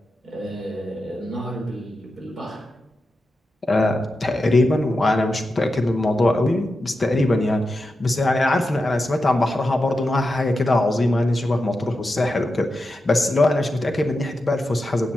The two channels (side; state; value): both; normal; correlation 0.90